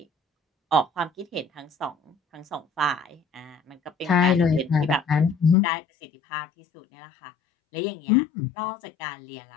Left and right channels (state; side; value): drops out; right; at 5.6 s